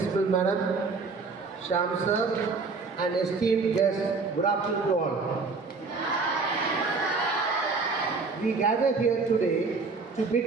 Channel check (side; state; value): left; quieter; 4.3 dB